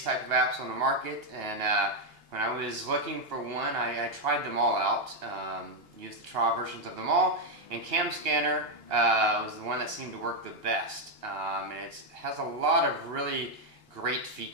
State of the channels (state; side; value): late; left; 2.8 ms